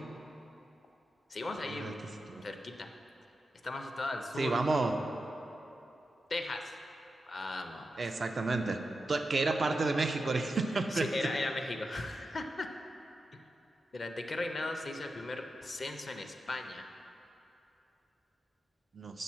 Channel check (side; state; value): both; normal; correlation 0.89